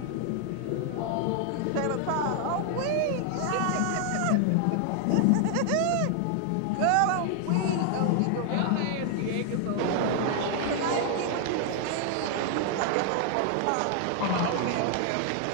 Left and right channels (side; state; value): both; different; correlation 0.00